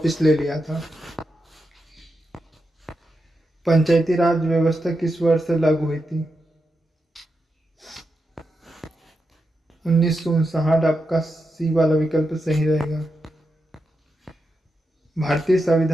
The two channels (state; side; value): normal; both; correlation 0.87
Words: ले लिया था। पंचायती राज व्यवस्था किस वर्ष से लागू हुई थी? 1959, आपका सी वाला विकल्प सही रहेगा। भारतीय